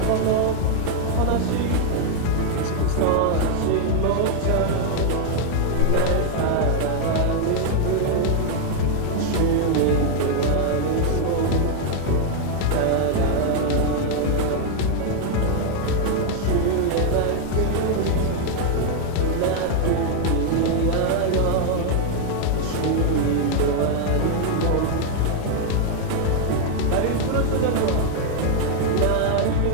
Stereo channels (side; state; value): both; different; correlation 0.00